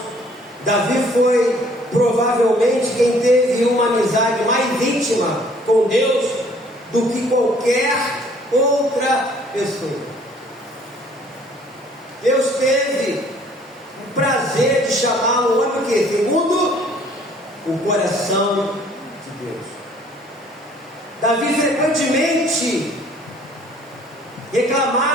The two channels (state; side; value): normal; both; correlation 0.57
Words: Davi foi provavelmente quem teve uma amizade mais íntima com Deus do que qualquer outra pessoa. Deus teve o prazer de chamá-lo, olha o que? Segundo o coração de Deus. Davi frequentemente